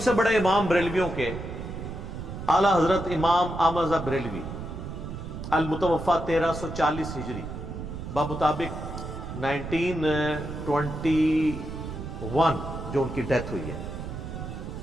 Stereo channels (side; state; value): right; noise; rumble, 8 dB below the sound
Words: سے بڑے امام بریلویوں کے اعلیٰ حضرت امام احمد رضا بریلوی المتوفا 1340 ہجری بمطابق 1921 جو ان کی ڈیتھ ہوئی ہے.